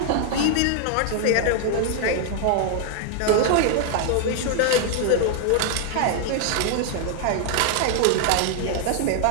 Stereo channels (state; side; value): different; both; correlation 0.00